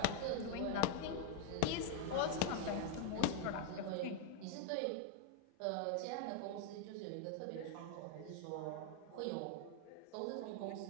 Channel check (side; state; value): both; different; correlation 0.01